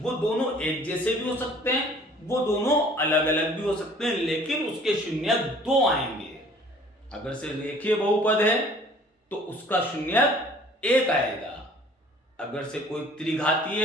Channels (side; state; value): both; normal; correlation 0.52